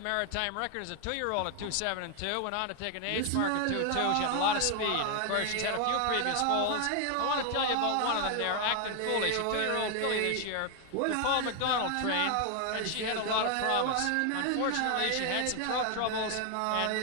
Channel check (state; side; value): different; both; correlation 0.00